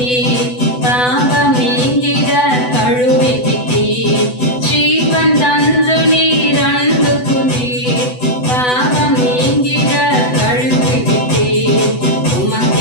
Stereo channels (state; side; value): late; right; 8.0 ms